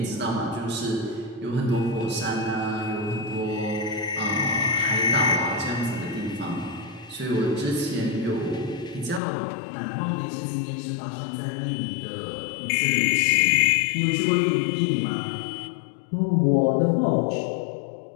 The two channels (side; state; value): right; drops out; at 9.2 s